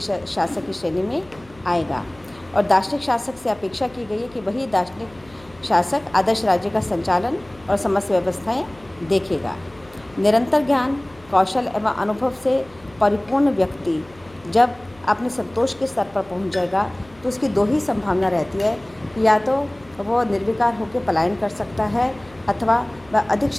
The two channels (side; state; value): left; noise; hum, 26 dB below the sound